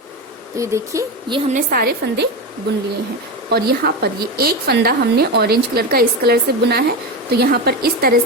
तो ये देखिए, ये हमने सारे फंदे बुन लिए हैं और यहाँ पर ये एक फंदा हमने ऑरेंज कलर का इस कलर से बुना है, तो यहाँ पर इस तरह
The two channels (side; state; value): both; normal; correlation 0.18